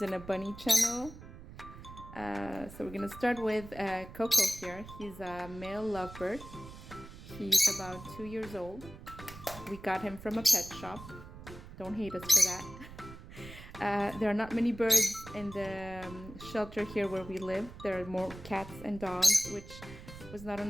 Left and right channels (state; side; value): noise; right; rumble, 15 dB below the sound